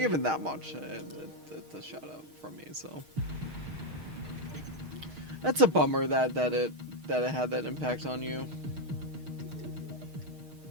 that much, it's a shout out from me, so that's a bummer that it had that impact on you.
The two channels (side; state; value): left; late; 6.4 ms